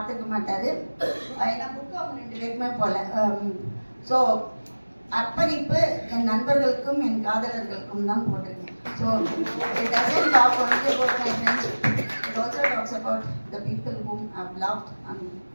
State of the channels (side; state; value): both; inverted; correlation -1.00